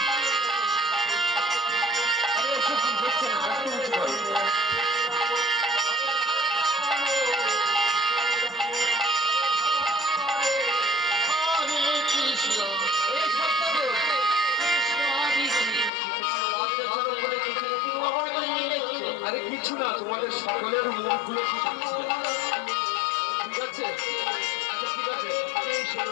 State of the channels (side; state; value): right; drops out; at 15.9 s